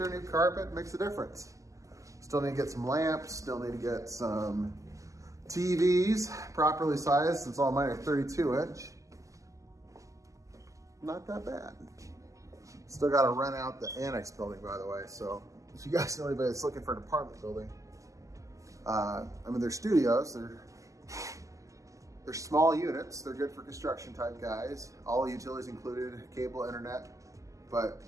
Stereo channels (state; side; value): late; left; 0.16 ms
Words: new carpet makes a difference. Still need to get some lamps, still need to get some TVs properly sized since all mine are 32 inch. not that bad. Still got to rent out the annex building, by the way. So if you guys know anybody that's looking for an apartment building, I mean, they're studios. They're small units. They're good for construction type guys. All utilities included, cable, internet, but